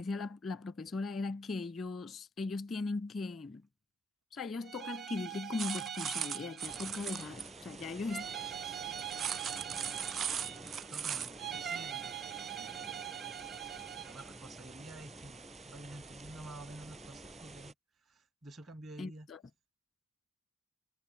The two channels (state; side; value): normal; both; correlation 0.67